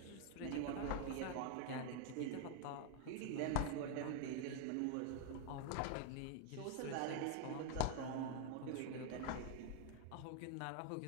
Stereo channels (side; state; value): both; different; correlation 0.00